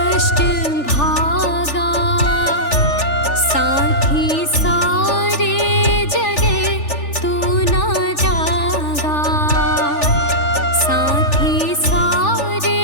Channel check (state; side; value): late; right; 3.4 ms